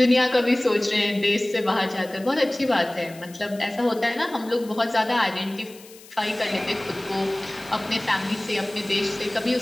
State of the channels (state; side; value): noise; left; hiss, 21 dB below the sound